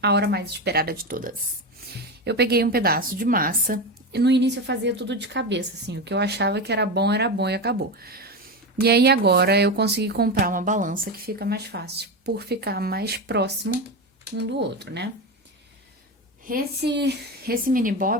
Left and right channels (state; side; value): normal; both; correlation 0.18